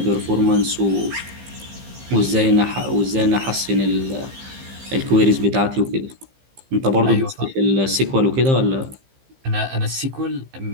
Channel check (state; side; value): late; left; 15 ms